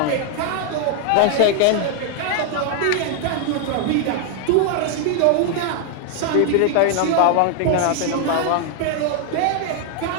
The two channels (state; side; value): different; both; correlation 0.00